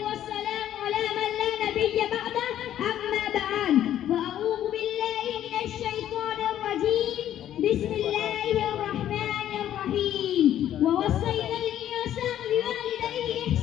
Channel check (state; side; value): quieter; right; 11.4 dB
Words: والسلام على من لا نبي بعده أما بعد فأعوذ بالله من الشيطان الرجيم بسم الله الرحمن الرحيم ووصينا الإنسان بوالديه